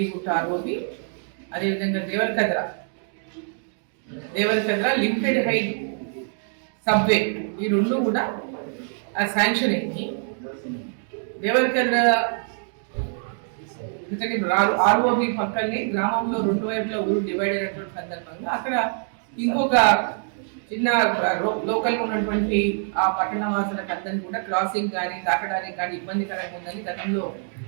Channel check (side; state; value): left; silent; 55 dB below the other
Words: గుట్ట ఆర్ఓబి అదేవిధంగా దేవరకద్ర లిమిటెడ్ హైట్ సబ్వే ఈ రెండు కూడా శాంక్షన్ అయింది. దేవరకద్ర ఎందుకంటే ఆర్ఓబి పక్కనే గ్రామంలో రెండు వైపులా ఊరు డివైడ్ అయినటువంటి సందర్భంగా అక్కడ ఇంకొక చిన్న లోకల్ ఉన్నటువంటి ఆ పట్టణ వాసులకు అందరినీ కూడా క్రాసింగ్ కానీ దాటడానికి కానీ ఇబ్బందికరంగా ఉందని గతంలో